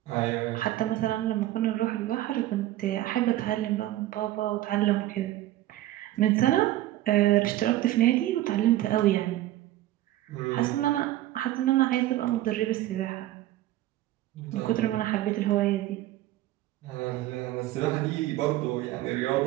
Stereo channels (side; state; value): left; quieter; 14.9 dB